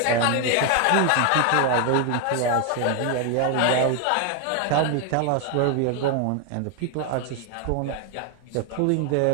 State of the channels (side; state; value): both; different; correlation 0.01